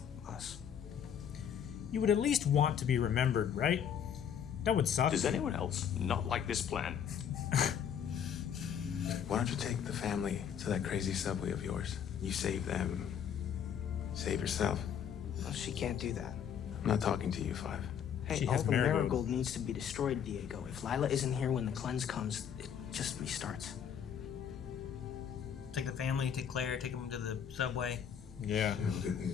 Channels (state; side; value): quieter; right; 8.3 dB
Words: us. You would at least want to be remembered, right? That would suck. Does anyone else not like this plan? Why don't you take the family to that crazy subway of yours? You save them. Save yourself. Well, she can't do that. I'm not talking to you, Five. Hey, all the marigold needs to be destroyed, Diego. If Lila isn't here when the cleanse comes, it just restarts. Take the family, take Claire, take them to the subway. Yeah.